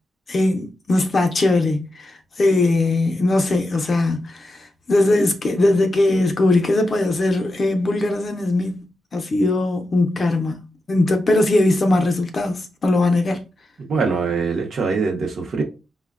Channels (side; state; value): both; normal; correlation 0.88